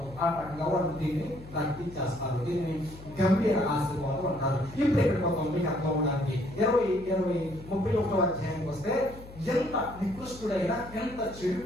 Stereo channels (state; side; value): noise; left; hum, 17 dB below the sound